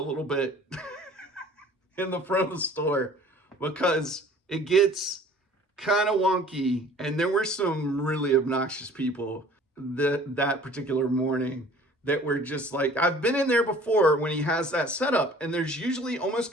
bit in the front of the store, because it gets kind of wonky. And there were some really obnoxious people that particular morning that were just like, I've been in there before when he has that setup, and there's usually almost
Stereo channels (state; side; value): normal; both; correlation 0.50